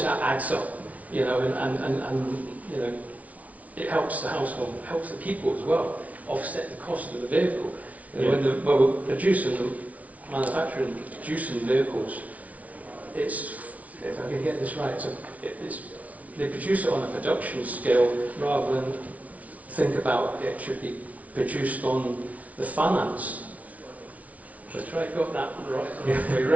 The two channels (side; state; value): left; late; 0.069 ms